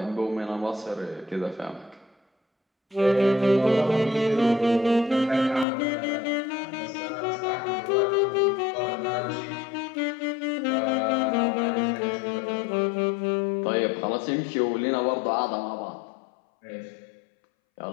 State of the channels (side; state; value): right; drops out; at 5.7 s